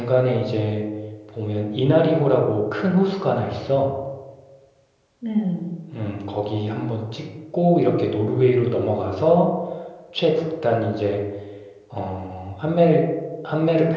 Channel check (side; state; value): both; identical; correlation 1.00